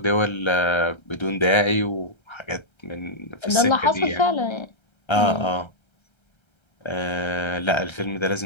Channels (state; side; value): late; right; 1.3 ms